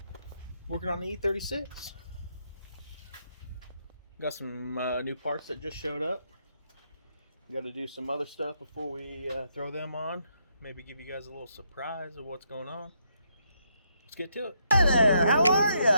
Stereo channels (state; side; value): inverted; both; correlation -0.76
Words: working on the E36. Got some new parts that just showed up. Got to do some other stuff before we throw them on. Maybe give you guys a little surprise of what's going on. Let's get to it. Hey there, how are you?